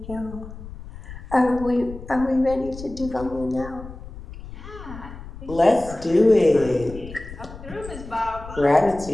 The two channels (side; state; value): left; noise; rumble, 13 dB below the sound